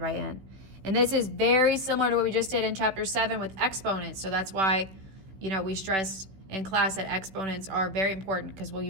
n. And this is very similar to what we just did in chapter 7 with exponents. So that's why, we stressed in class that exponents are very important because we'll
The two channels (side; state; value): left; late; 16 ms